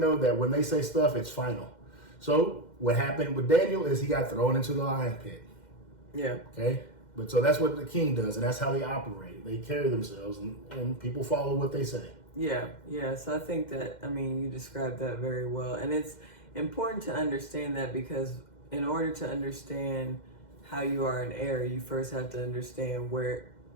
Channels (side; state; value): right; late; 2.1 ms